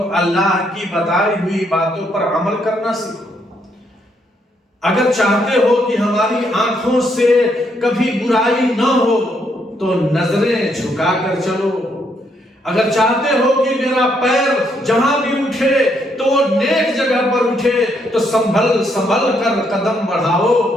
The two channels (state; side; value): normal; both; correlation 0.74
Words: اللہ کی بتائی ہوئی باتوں پر عمل کرنا سیکھو۔ اگر چاہتے ہو کہ ہماری آنکھوں سے کبھی برائی نہ ہو تو نظریں جھکا کر چلو۔ اگر چاہتے ہو کہ میرا پیر جہاں بھی اٹھے تو وہ نیک جگہ پر اٹھے تو سنبھل کر قدم بڑھاؤ۔